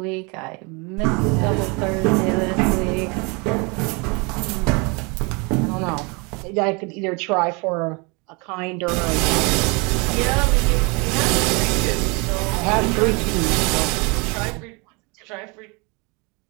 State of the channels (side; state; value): left; quieter; 29.8 dB